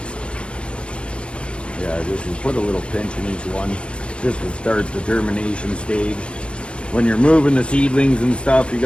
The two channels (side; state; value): right; late; 0.057 ms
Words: Yeah, just put a little pinch in each one just to start the germination stage. When you're moving the seedlings and stuff, you